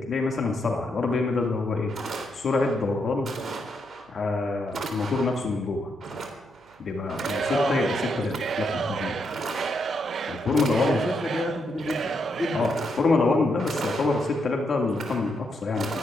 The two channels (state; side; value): noise; right; hum, 30 dB below the sound